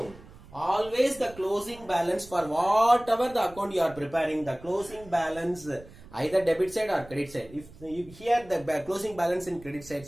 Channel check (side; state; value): right; noise; rumble, 20 dB below the sound